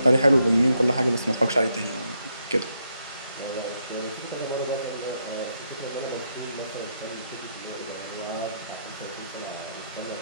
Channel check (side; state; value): both; inverted; correlation -0.79